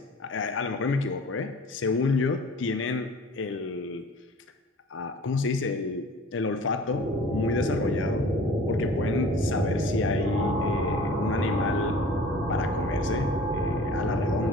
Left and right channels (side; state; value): both; normal; correlation 0.45